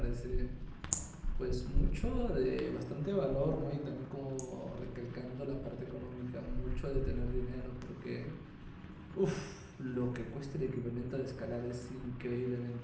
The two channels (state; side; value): identical; both; correlation 1.00